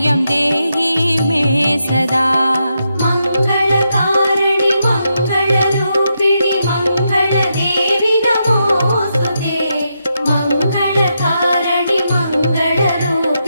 देहि मे सदा मङ्गलकारिणि मङ्गलरूपिणि मङ्गलदेवि नमोऽस्तुते मङ्गलकारिणि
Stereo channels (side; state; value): both; inverted; correlation -0.83